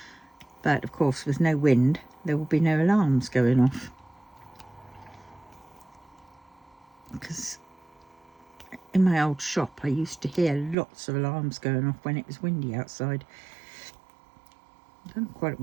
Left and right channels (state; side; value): drops out; left; at 10.8 s